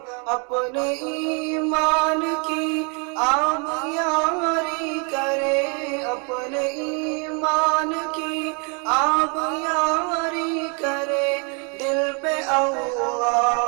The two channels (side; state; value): left; quieter; 35.7 dB